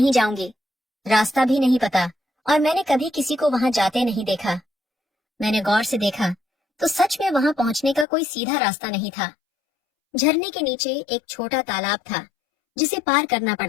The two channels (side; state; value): right; drops out; at 8.1 s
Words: जाऊंगी। रास्ता भी नहीं पता और मैंने कभी किसी को वहां जाते नहीं देखा। मैंने गौर से देखा तो सच में वहां पहुंचने का कोई सीधा रास्ता नहीं था। झरने के नीचे एक छोटा तालाब था जिसे पार करना